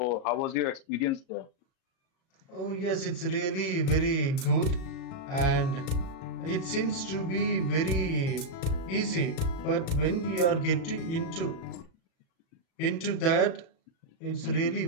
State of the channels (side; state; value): right; late; 37 ms